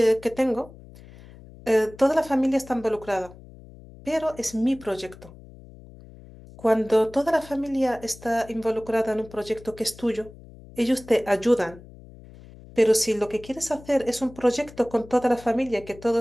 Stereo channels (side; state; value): left; noise; hum, 20 dB below the sound